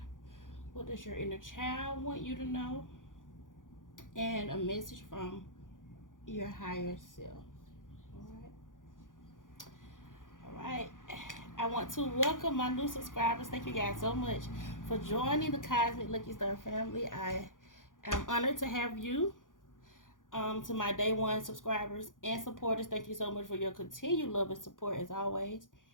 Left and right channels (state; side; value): late; right; 0.88 ms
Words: What does your inner child want you to know? And a message from your higher self. Alright. I want to welcome my new subscribers. Thank you guys so much for joining the Cosmic Lucky Star family. I am honored to have you. To my day one subscribers and supporters, thank you so much for your continued love and support as always.